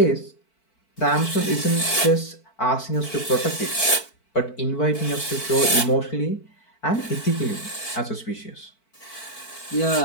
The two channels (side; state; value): right; late; 4.5 ms